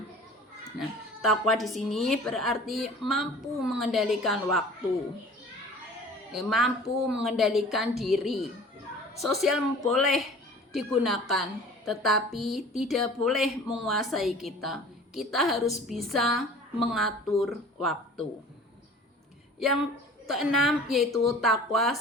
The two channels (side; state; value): both; normal; correlation 0.45